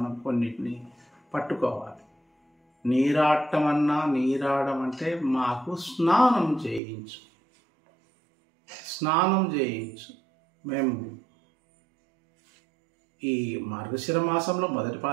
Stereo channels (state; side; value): drops out; left; at 6.8 s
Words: కొన్నిటిని పట్టుకోవాలి. నీరాటం అన్నా, నీరాడం అంటే మాకు స్నానం చేయించు. మేము ఈ మార్గశిర మాసంలో మొదటి